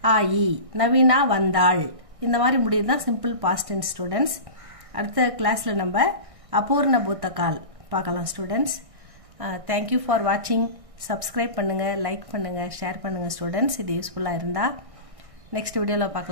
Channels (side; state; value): left; late; 1.6 ms